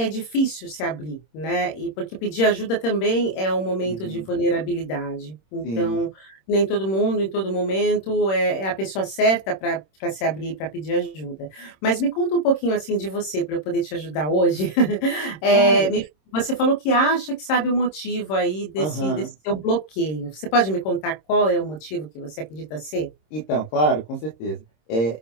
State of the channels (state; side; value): late; right; 26 ms